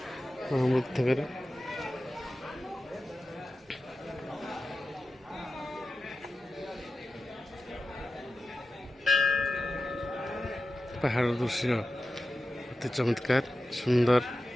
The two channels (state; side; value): normal; both; correlation 0.92